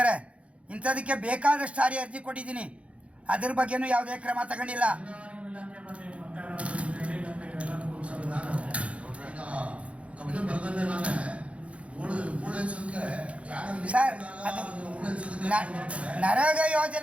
ಇಂಥದಕ್ಕೆ ಬೇಕಾದಷ್ಟು ಸಾರಿ ಅರ್ಜಿ ಕೊಟ್ಟಿದ್ದೀನಿ. ಅದ್ರ ಬಗ್ಗೆನೂ ಯಾವುದೇ ಕ್ರಮ ತಗೊಂಡಿಲ್ಲ. ಸರ್, ನರೇಗಾ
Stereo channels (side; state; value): left; late; 0.063 ms